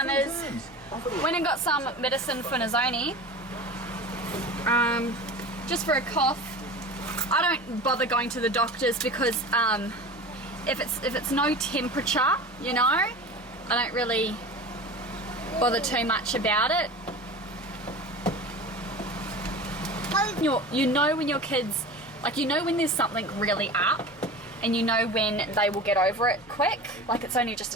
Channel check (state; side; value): noise; right; hum, 28 dB below the sound